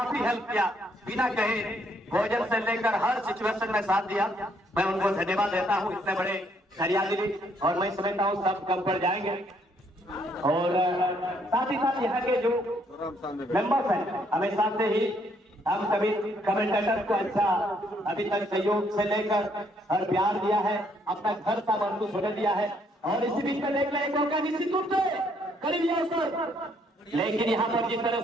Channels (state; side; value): normal; both; correlation 0.69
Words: हेल्प किया, बिना कहे भोजन से लेकर हर सिचुएशन में साथ दिया। मैं उनको धन्यवाद देता हूँ, इतने बड़े हरियाली, और मैं समझता हूँ सब कम पर जाएंगे। और साथ ही साथ यहाँ के जो मेंबर्स हैं, हमेशा से ही हम सभी कमेंटेटर को अच्छा अभी तक सहयोग से लेकर और प्यार दिया है, अपना घर सा महसूस होने दिया है। और इसी बीच में देख लें मौका निश्चित रूप से करीबी अवसर, लेकिन यहाँ पर जिस तरह